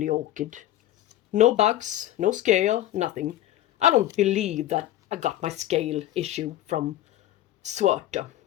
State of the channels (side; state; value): right; quieter; 13.6 dB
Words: orchid. No bugs, no scale, nothing. I don't believe that I got my scale issue from Schwerter.